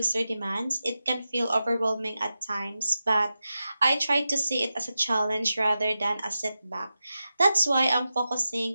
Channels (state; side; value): inverted; both; correlation -0.92